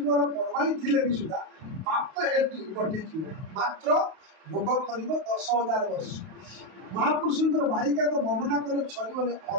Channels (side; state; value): left; late; 32 ms